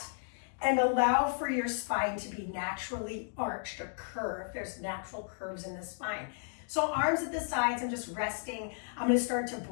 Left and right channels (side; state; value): right; silent; digital silence